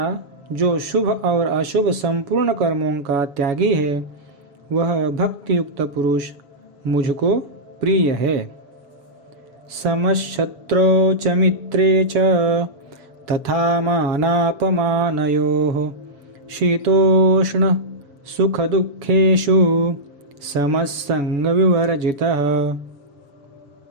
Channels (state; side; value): late; left; 7.1 ms